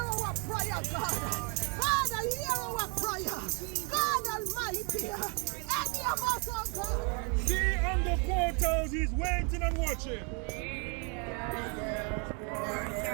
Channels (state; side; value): quieter; left; 35.8 dB